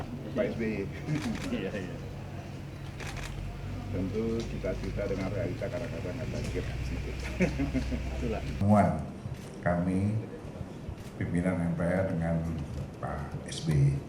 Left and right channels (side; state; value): both; identical; correlation 1.00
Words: Pak SBY. Iya, iya. Tentu cita-cita dengan realita kadang-kadang ada gap sedikit. Itulah. Pertemuan kami pimpinan MPR dengan Pak SBY